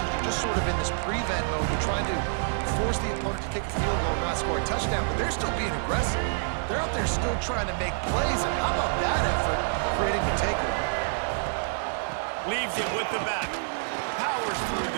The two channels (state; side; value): silent; left; 60 dB below the other